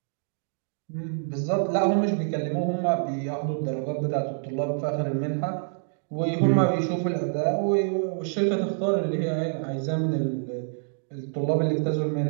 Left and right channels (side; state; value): left; silent; digital silence